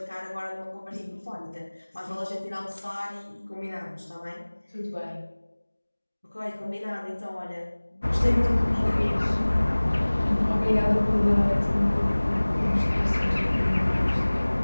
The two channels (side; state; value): both; inverted; correlation -1.00